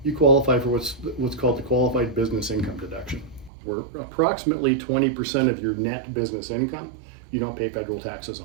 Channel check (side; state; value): left; drops out; at 3.5 s